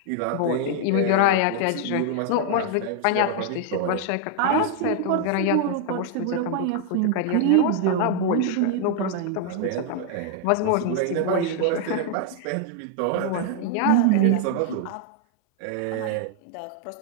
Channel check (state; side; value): different; both; correlation 0.00